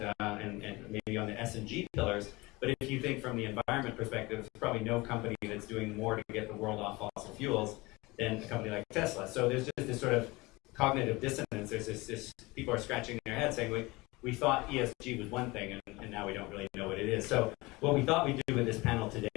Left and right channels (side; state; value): right; quieter; 22.7 dB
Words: and maybe on the S&G pillars. But if you think from the environment perspective, there's probably no company that's doing more to get the world off fossil fuels than a company like Tesla. So there's just this sort of cognitive dissonance. There's this people are scratching their heads saying, we thought ESG was one thing, and now we don't really know what it is. So what we thought we'd do with this panel